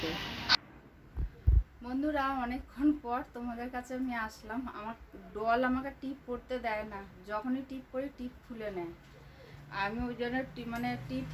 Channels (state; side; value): identical; both; correlation 1.00